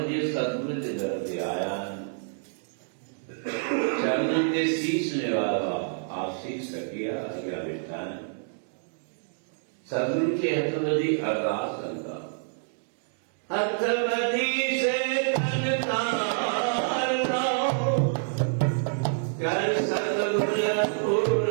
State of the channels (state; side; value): silent; left; digital silence